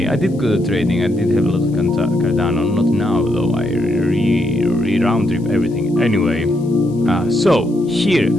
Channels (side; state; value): left; noise; hiss, 29 dB below the sound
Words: I did good at trading. I did have a lot of Cardano. Not now though. I round trip everything. Anyway, so here,